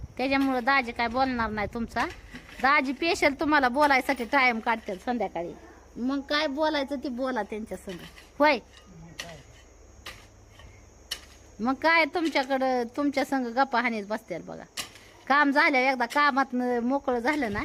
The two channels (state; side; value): identical; both; correlation 1.00